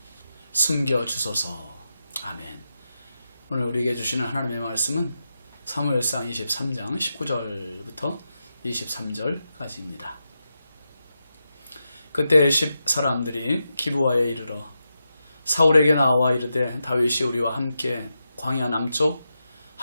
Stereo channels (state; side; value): inverted; both; correlation -0.88